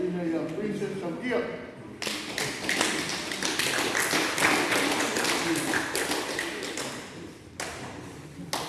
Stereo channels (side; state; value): both; identical; correlation 1.00